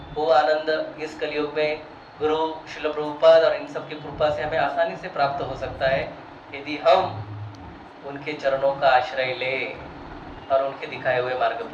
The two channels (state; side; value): identical; both; correlation 1.00